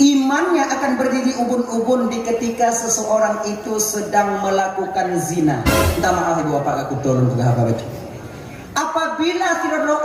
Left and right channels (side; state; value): both; identical; correlation 1.00